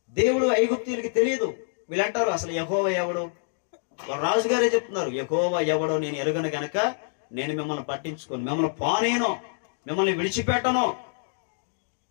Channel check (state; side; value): silent; right; digital silence